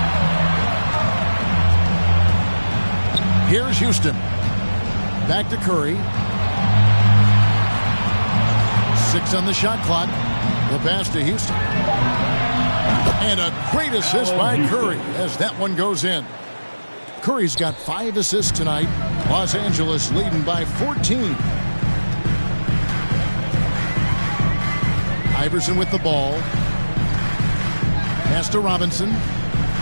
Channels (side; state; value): both; inverted; correlation -1.00